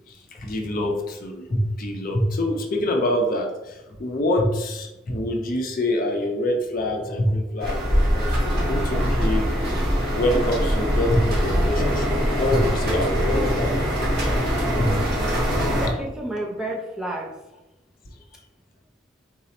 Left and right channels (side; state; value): both; normal; correlation 0.69